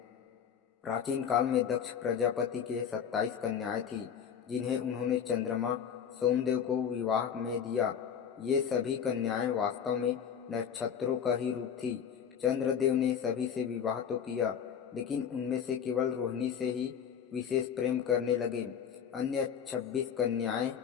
प्राचीन काल में दक्ष प्रजापति के 27 कन्याएं थीं, जिन्हें उन्होंने चंद्रमा सोमदेव को विवाह में दिया। ये सभी कन्याएं वास्तव में नक्षत्रों का ही रूप थी। चंद्रदेव ने सभी से विवाह तो किया, लेकिन उनमें से केवल रोहिणी से ही विशेष प्रेम करने लगे। अन्य 26 कन्याएं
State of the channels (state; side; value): quieter; right; 7.9 dB